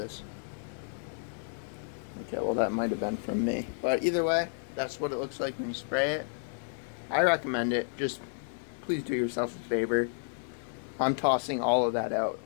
Okay, well, that might have been from me, but either way, that's what it looks like when you spray it. I recommend it. Just please do yourself a favor. I'm tossing all of that out.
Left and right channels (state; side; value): silent; right; digital silence